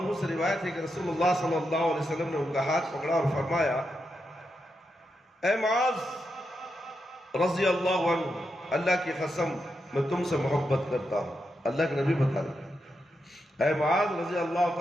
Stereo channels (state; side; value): normal; both; correlation 0.85